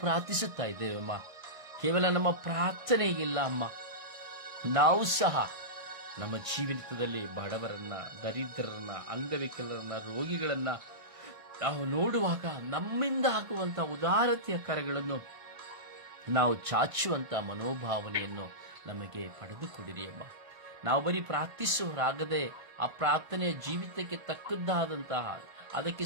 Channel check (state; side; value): late; left; 1.5 ms